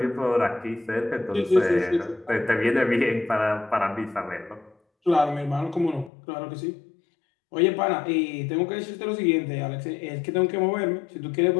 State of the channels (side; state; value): right; drops out; at 6.1 s